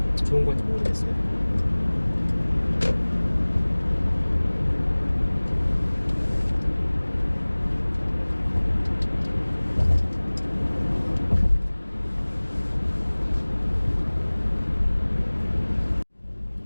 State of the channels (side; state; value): both; inverted; correlation -1.00